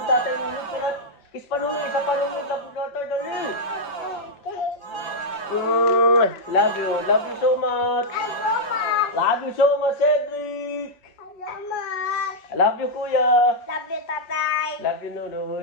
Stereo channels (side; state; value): right; late; 5.9 ms